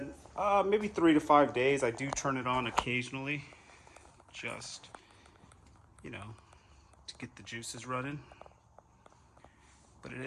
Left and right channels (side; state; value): both; identical; correlation 1.00